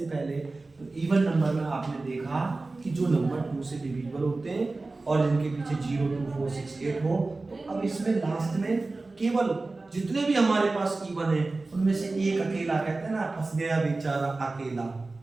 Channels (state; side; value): quieter; left; 3.4 dB